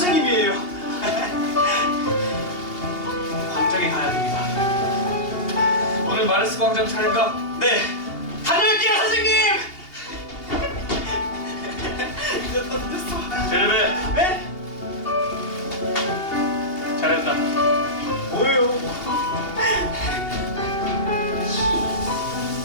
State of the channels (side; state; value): right; late; 2.8 ms